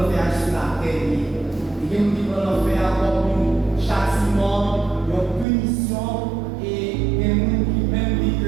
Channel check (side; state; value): left; drops out; at 5.5 s